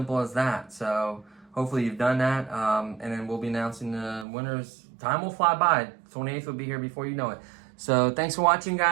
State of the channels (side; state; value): left; drops out; at 4.2 s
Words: as that. So hopefully you've done that. And then we'll be announcing the winners. Time will fly by. 28th will be here before you know it. So thanks for watching,